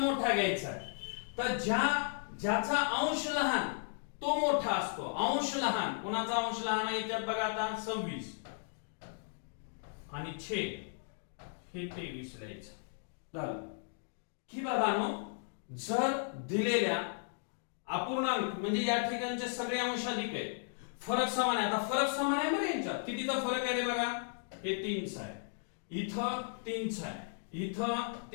घ्यायचा आहे. तर ज्याचा अंश लहान तो मोठा असतो. अंश लहान, कोणाचा अंश लहान आहे याच्यात बघा. आता 26 आणि छेद हे 23 लिहायचं झालं की बाबांनो, जर दिलेल्या अपूर्णांक म्हणजे या ठिकाणचे सगळे अंश अधिक आहे, फरक समान आहे. आता फरक समान आहे बरं यांच्यात. कितीचा फरक आहे रे बघा? हे 3 आहे. इथं 3 आहे. इथं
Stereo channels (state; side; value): silent; right; digital silence